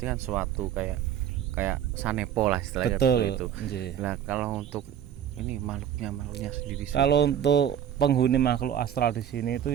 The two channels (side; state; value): left; quieter; 9.7 dB